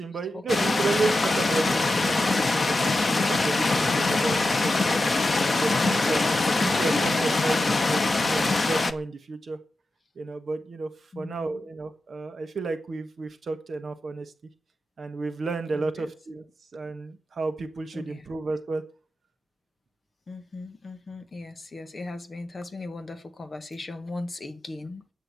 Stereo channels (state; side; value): normal; both; correlation 0.91